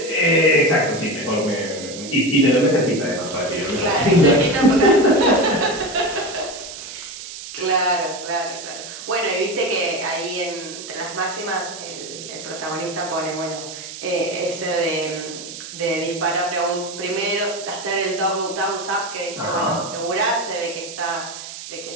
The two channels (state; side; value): noise; right; hiss, 11 dB below the sound